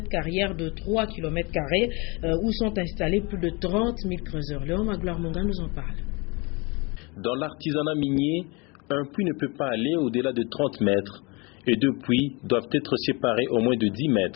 carrière de 3 km² où sont installés plus de 30 000 creuseurs. Léon Magloire Monga nous en parle. Dans l'artisanat minier, un puits ne peut pas aller au-delà de 30 mètres et 2 puits doivent être séparés au moins de 10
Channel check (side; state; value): right; quieter; 28.1 dB